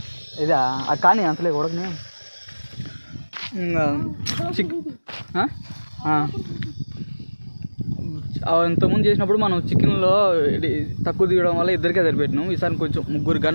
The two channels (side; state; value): both; inverted; correlation -1.00